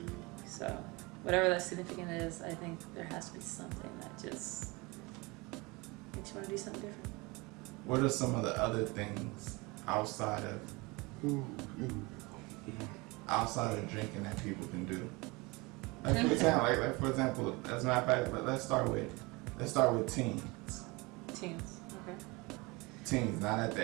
So, whatever that significant is, I think there has to be something that just makes you want to do something different. What are some of the other things outside of drinking that people can do? Like for example, as a matter of fact, let's start with teens. Teens, okay. Teens, not at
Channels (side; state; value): left; quieter; 25.3 dB